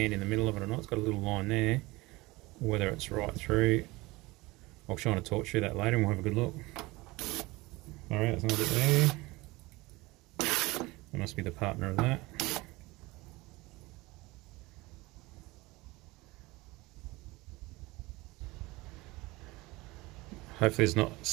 in the middle of it or not. It's got a little line there. Whether it's right through. I'll shine a torch through that later and we'll have a good look. Alright, there's another bit there. That must be the partner of that. Hopefully there's not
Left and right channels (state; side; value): quieter; left; 21.8 dB